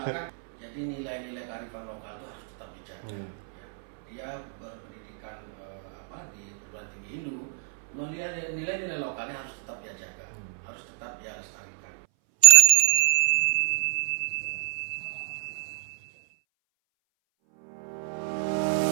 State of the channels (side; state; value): left; silent; 60 dB below the other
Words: Jadi nilai-nilai kearifan lokal itu harus tetap dijaga, ya. Dia berpendidikan di perguruan tinggi Hindu, nilai-nilai lokalnya harus tetap dia jaga, harus tetap dia lestarikan.